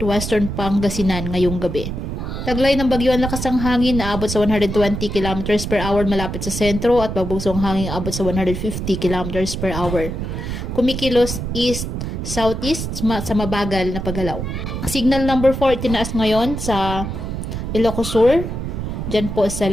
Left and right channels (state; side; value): noise; right; rumble, 5 dB below the sound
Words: Pangasinan ngayong gabi. Taglay ng bagyo ang lakas ng hangin na abot sa 120 km per hour malapit sa sentro at pagbugsong hangin abot sa 150 km per hour. Kumikilos east-southeast sa mabagal na paggalaw. Signal number 4 itinaas ngayon sa Ilocos Sur, dyan po sa